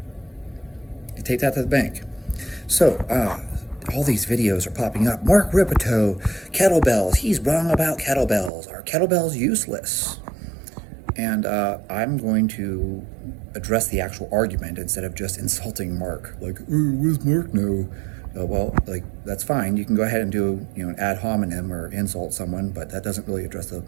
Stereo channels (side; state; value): left; drops out; at 8.5 s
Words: You take that to the bank. So, all these videos are popping up. Mark Rippetoe, kettlebells, he's wrong about kettlebells. Are kettlebells useless? And I'm going to address the actual argument instead of just insulting Mark. Like, where's Mark now? Well, like, that's fine. You can go ahead and do, an ad hominem or insult someone, but that doesn't really address the